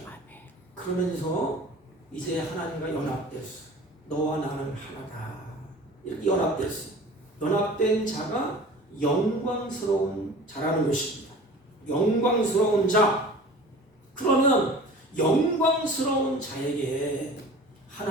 그러면서 이제 하나님과 연합됐어. 너와 나는 하나다. 이렇게 연합됐어. 연합된 자가 영광스러운 자라는 것입니다. 영광스러운 자. 그러면 영광스러운 자에게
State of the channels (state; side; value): normal; both; correlation 0.41